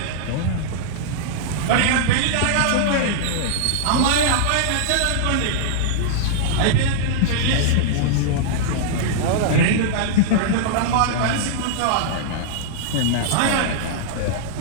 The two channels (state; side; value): different; both; correlation -0.01